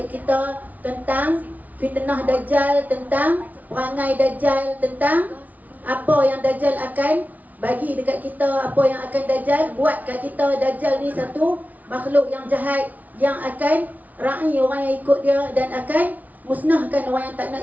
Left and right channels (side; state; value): left; late; 0.075 ms